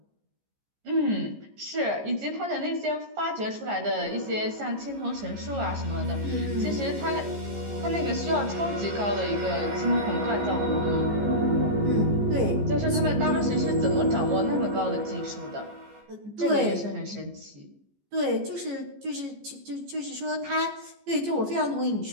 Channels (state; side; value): late; left; 14 ms